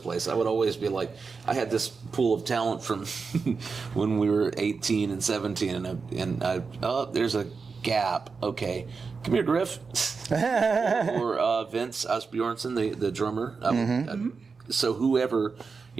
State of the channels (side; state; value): left; quieter; 4.9 dB